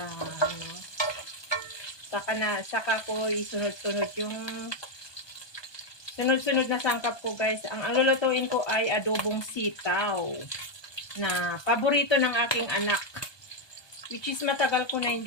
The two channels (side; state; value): right; late; 1.2 ms